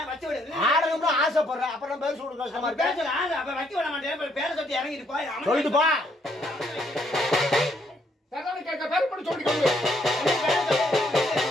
ஆசைப்படுறேன் அப்புறம் பேர் சொல்லுங்க சொல்லிட்டு போ.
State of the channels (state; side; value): normal; both; correlation 0.70